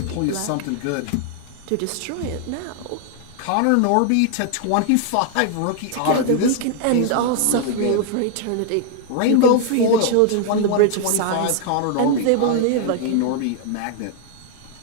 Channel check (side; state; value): both; different; correlation 0.00